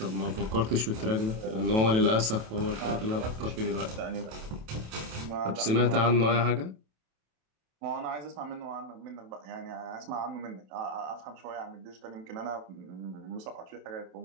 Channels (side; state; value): left; late; 27 ms